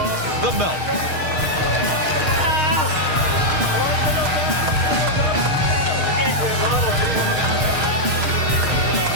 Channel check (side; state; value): left; late; 6.5 ms